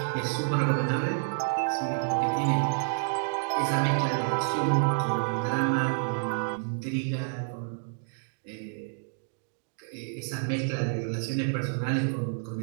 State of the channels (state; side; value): silent; left; digital silence